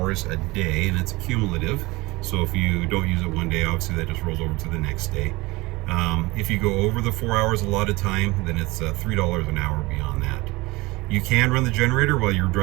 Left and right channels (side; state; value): left; quieter; 22.3 dB